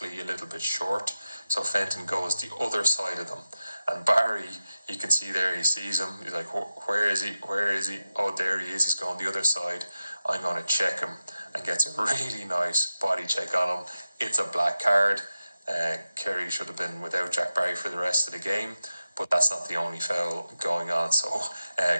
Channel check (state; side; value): inverted; both; correlation -0.93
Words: a little bit short, so Fenton goes the other side of them. And Barry, you can see there, he sees him. He's like, where is he? Where is he? Oh, there he is. He's going the other side. I'm going to check him, and gets a really nice body check on him. It's a black card. Kerry should have been without Jack Barry for the rest of the game. But that's not the only foul going on. So